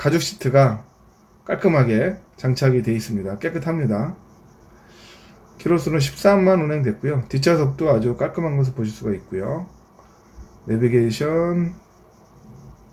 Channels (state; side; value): identical; both; correlation 1.00